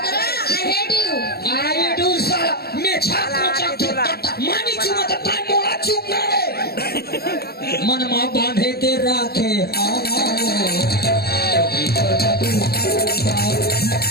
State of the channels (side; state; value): right; late; 0.46 ms